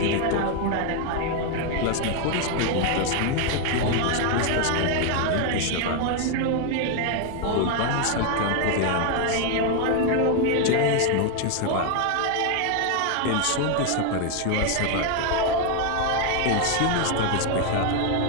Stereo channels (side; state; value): both; different; correlation 0.01